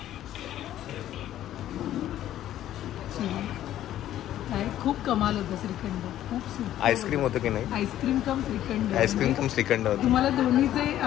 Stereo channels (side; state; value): right; quieter; 12.4 dB